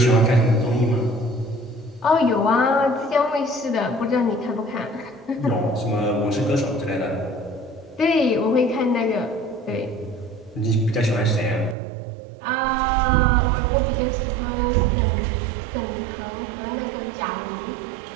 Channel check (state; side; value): drops out; left; at 11.8 s